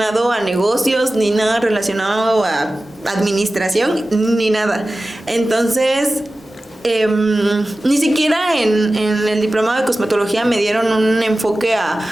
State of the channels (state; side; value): normal; both; correlation 0.95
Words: a negocios, ni nada relacionado a administración, ni nada. Entonces, ni siquiera en el diplomado de cosmetología me dieron un enfoque a